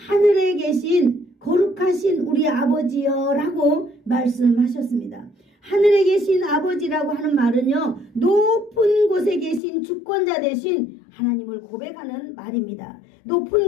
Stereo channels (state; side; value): drops out; right; at 9.6 s